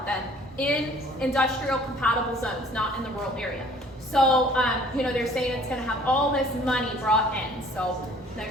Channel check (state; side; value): normal; both; correlation 0.54